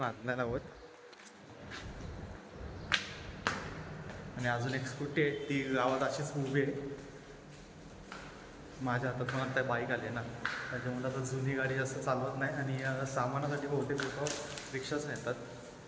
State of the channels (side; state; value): both; identical; correlation 1.00